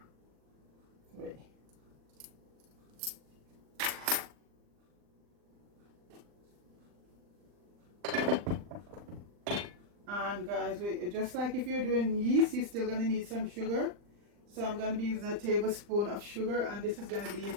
3. And guys, just like if you're doing yeast, you're still gonna need some sugar. So I'm gonna be using a tablespoon of sugar, and this is gonna be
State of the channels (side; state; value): left; late; 39 ms